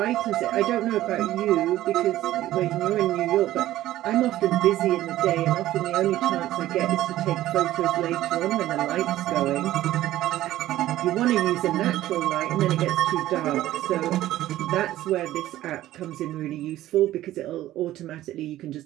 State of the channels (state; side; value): quieter; left; 14.5 dB